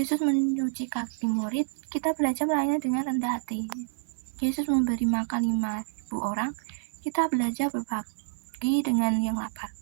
mencuci kaki murid, kita belajar melayani dengan rendah hati. Yesus memberi makan 5.000 orang, kita belajar berbagi dengan yang lapar.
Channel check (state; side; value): silent; left; digital silence